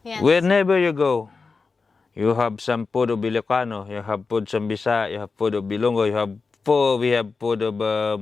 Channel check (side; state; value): right; quieter; 4.5 dB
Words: Yes. Wherever you go, you have some food of Ilocano, you have food of Bisaya, you have food of Bilongo, we have food of